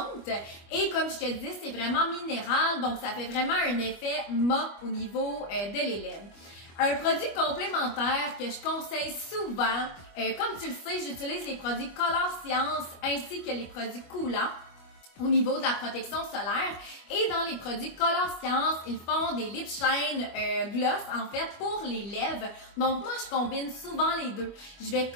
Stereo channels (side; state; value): right; late; 25 ms